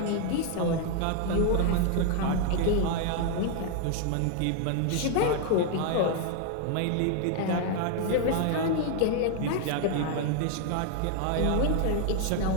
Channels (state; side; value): different; both; correlation 0.00